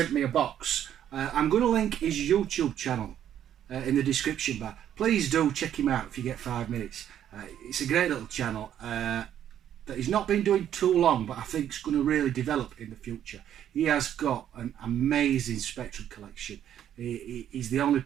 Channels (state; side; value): quieter; left; 10.4 dB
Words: me a box. I'm going to link his YouTube channel in the description bar. Please do check him out if you get 5 minutes. It's a great little channel that he's not been doing too long, but I think it's going to really develop in the future. He has got an amazing Spectrum collection. He's the only